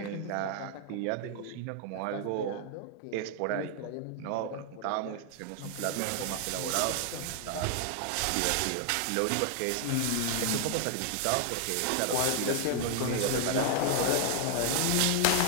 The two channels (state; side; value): different; both; correlation 0.00